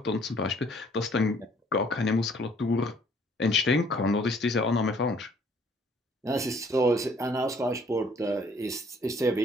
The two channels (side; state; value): both; normal; correlation 0.60